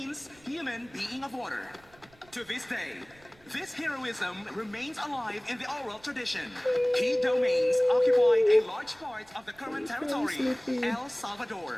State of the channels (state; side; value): noise; right; rumble, 28 dB below the sound